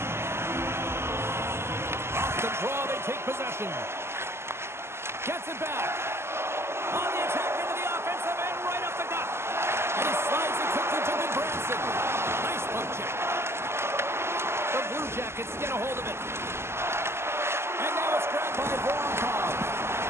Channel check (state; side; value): late; left; 0.12 ms